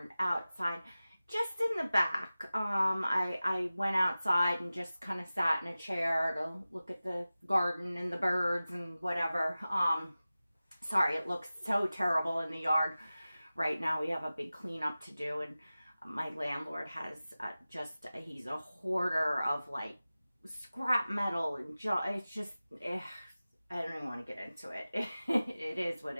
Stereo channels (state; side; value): inverted; both; correlation -0.96